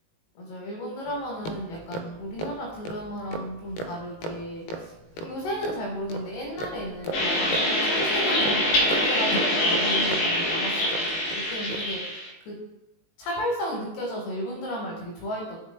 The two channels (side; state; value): right; late; 18 ms